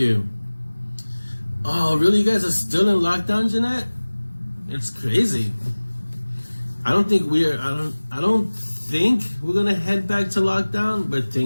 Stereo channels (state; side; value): inverted; both; correlation -1.00